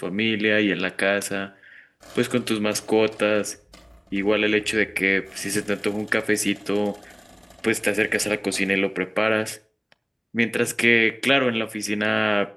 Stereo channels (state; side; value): identical; both; correlation 1.00